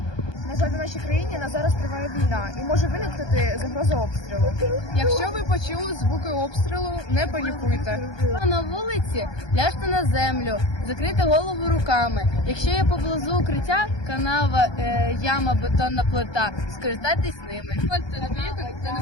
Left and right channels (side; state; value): right; late; 1.2 ms